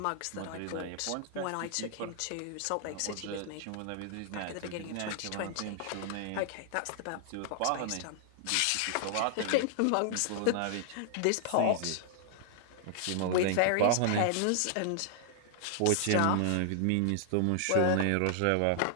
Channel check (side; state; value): both; different; correlation -0.01